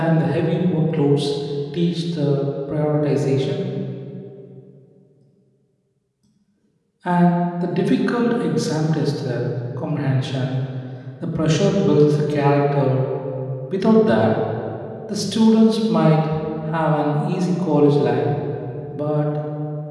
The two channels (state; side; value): identical; both; correlation 1.00